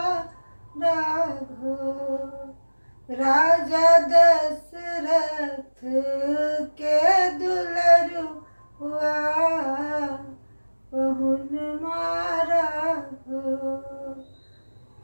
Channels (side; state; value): both; inverted; correlation -1.00